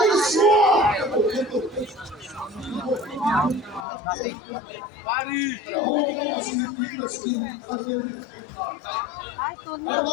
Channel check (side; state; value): right; drops out; at 3.9 s